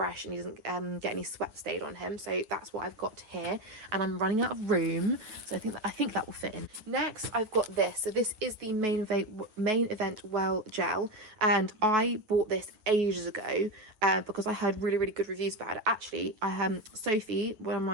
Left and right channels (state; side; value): late; left; 9.3 ms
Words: and he doesn't get any sweat stayed on him. So that's what I've got here, and I'm running out of room, so I think that will fit in. Next, I've got this. So this is the Main Event Well Gel, and I bought this ages ago because I heard really, really good reviews about it. Actually, Sophie, one of